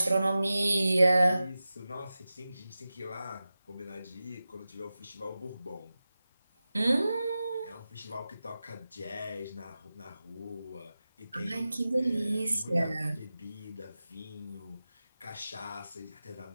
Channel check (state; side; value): inverted; both; correlation -0.94